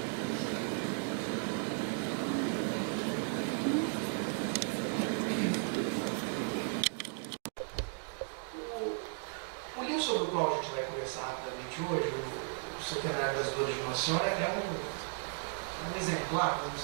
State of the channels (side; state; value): left; silent; 54 dB below the other